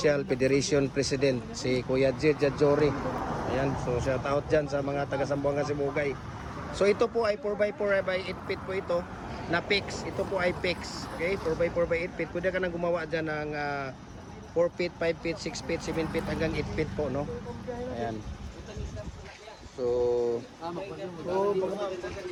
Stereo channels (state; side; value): identical; both; correlation 1.00